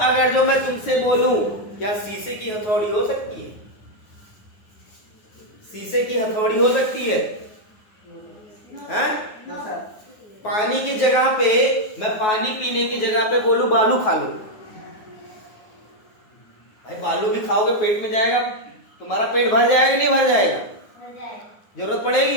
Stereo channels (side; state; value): right; late; 9.4 ms